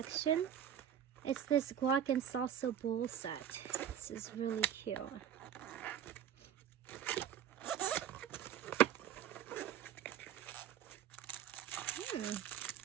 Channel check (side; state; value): left; quieter; 9.7 dB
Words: It's this guac and salsa bowl set. This is really cute.